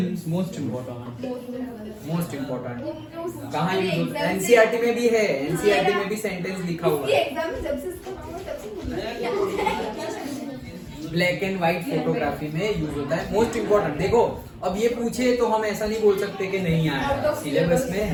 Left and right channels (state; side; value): identical; both; correlation 1.00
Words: Most important. कहाँ यूज होता है? NCERT में भी है, NCERT में भी सेंटेंस लिखा हुआ है। ब्लैक एंड व्हाइट फोटोग्राफी में यूज होता है। Most important. देखो अब ये पूछे तो हम ऐसा नहीं बोल सकते कि नहीं आया, सिलेबस में